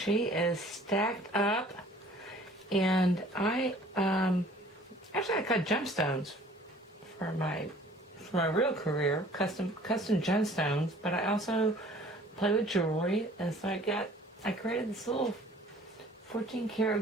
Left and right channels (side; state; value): both; normal; correlation 0.52